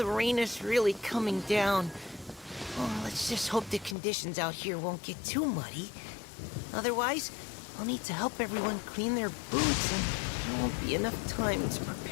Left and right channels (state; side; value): drops out; right; at 4.0 s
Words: rain is really coming down. Oh, let's just hope the conditions out here won't get too muddy. Otherwise, I'll need to help everyone clean their boots, and there won't be enough time to